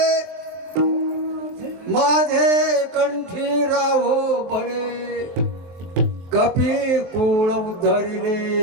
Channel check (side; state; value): left; late; 23 ms